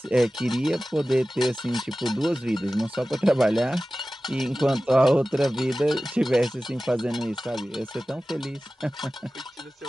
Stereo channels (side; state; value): both; normal; correlation 0.96